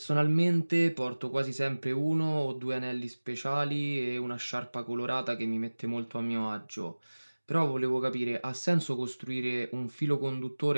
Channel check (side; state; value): both; inverted; correlation -1.00